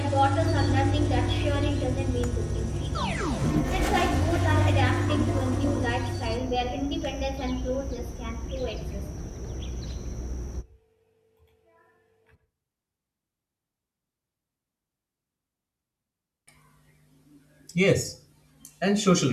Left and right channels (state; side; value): identical; both; correlation 1.00